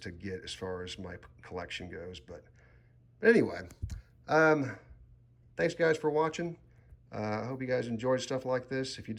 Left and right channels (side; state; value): both; identical; correlation 1.00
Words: get as far as my collection goes. But anyway, thanks guys for watching. I hope you guys enjoyed stuff like this. If you